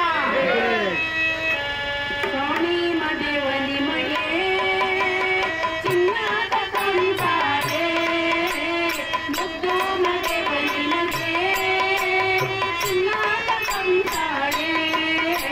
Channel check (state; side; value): identical; both; correlation 1.00